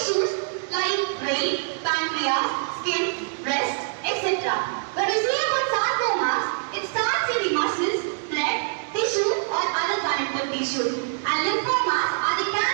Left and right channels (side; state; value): left; silent; digital silence